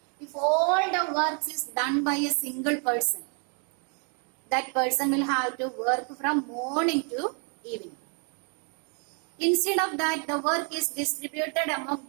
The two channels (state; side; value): quieter; left; 39.5 dB